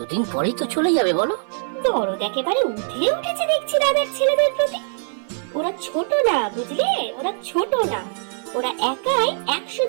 পরেই তো চলে যাবে বলো। দরদ একেবারে উঠে উঠেছে দেখছি দাদার ছেলেদের প্রতি। ওরা ছোট না, বুঝলে? ওরা ছোট না, ওরা একাই 100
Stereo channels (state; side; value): silent; left; 56 dB below the other